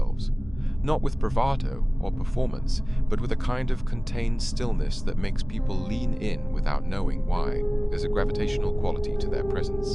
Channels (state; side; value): noise; left; hum, 17 dB below the sound